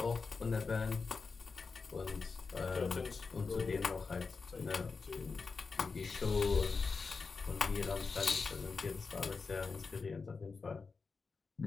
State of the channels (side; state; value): right; quieter; 4.7 dB